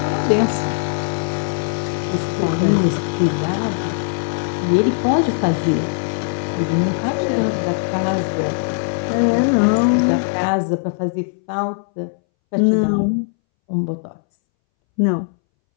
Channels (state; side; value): silent; right; 64 dB below the other